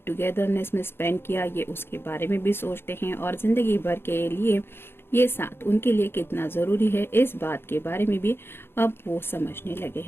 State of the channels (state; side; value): late; right; 0.11 ms